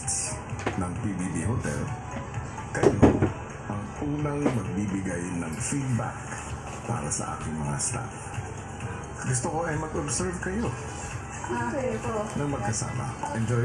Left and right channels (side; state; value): both; identical; correlation 1.00